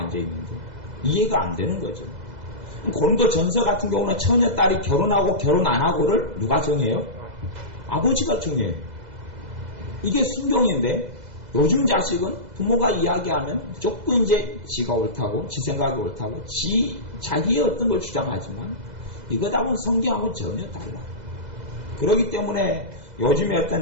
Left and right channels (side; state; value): left; late; 2.0 ms